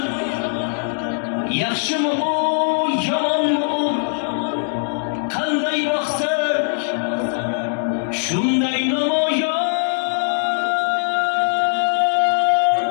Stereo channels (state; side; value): silent; right; digital silence